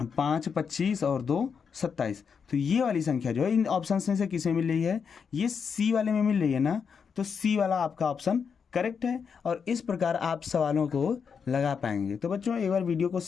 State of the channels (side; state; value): right; quieter; 6.3 dB